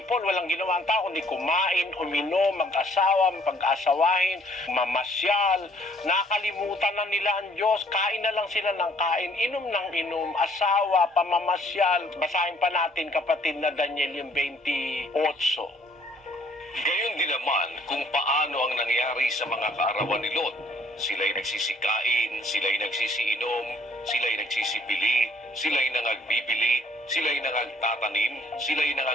walang ginawa ang tao, kundi kumain, uminom, mag-asawa, pag-asawahin, mamasyal. Nakalimutan na nila ang Diyos, kain na lang sila ng kain, inom ng inom, asawa, pamamasyal. Basahin pa natin, kapatid, na Daniel yung 28. Gayon din naman kung paano ang nangyari sa mga kaarawan ni Lot. Sila'y nagsisikain, sila'y nagsisiinom, sila'y nagsisibili, sila'y nangagbibili, sila'y nangagtatanim, sila'y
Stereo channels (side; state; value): both; normal; correlation 0.61